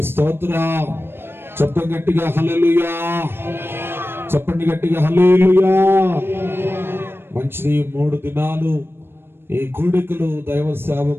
స్తోత్రం. చెప్పండి గట్టిగా హల్లెలూయా. చెప్పండి గట్టిగా హల్లెలూయా. మంచిది. 3 దినాలు ఈ కూడికలు దైవ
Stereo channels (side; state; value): left; late; 0.11 ms